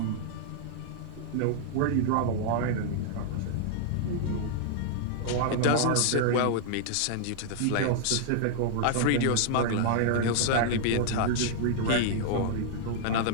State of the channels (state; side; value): different; both; correlation -0.01